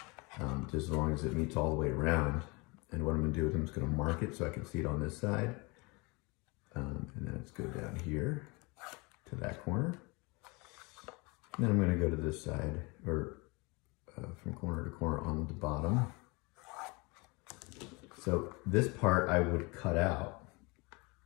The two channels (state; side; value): quieter; right; 27.6 dB